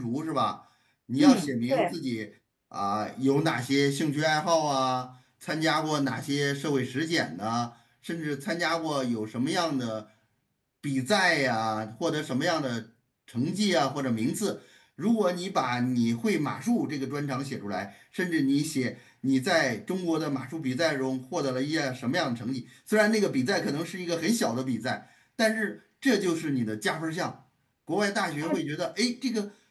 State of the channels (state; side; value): identical; both; correlation 1.00